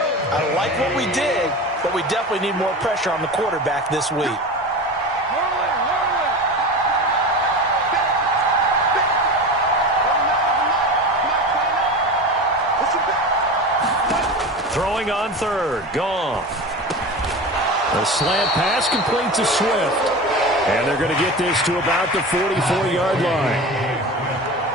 I like what we did, but we definitely need more pressure on the quarterback this week. Throwing on 3rd. Goff. A slant pass complete to Swift. And they're going to get this to about the 44-yard line.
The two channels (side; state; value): both; normal; correlation 0.29